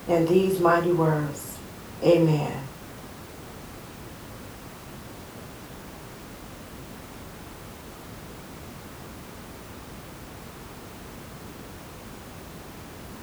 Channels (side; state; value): both; identical; correlation 1.00